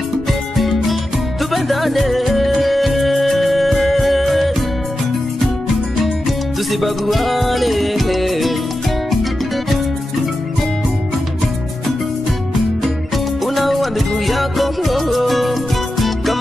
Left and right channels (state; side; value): normal; both; correlation 0.91